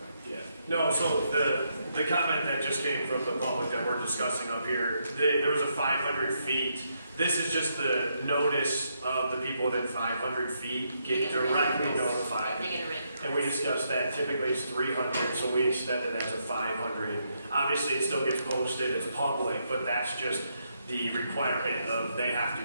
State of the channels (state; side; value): inverted; both; correlation -0.78